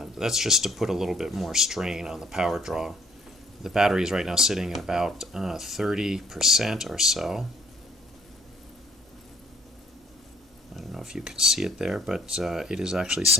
just to put a little bit more strain on the power draw. The battery is right now sitting at about 30% or so. I don't know if you can see it there, but it is actually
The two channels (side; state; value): both; normal; correlation 0.62